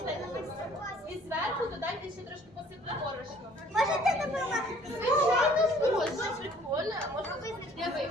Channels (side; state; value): both; normal; correlation 0.56